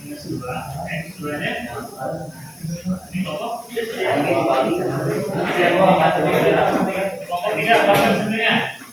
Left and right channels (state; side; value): noise; left; hiss, 28 dB below the sound